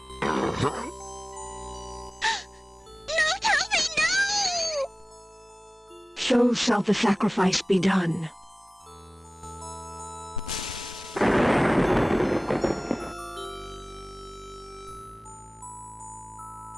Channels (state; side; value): normal; both; correlation 0.98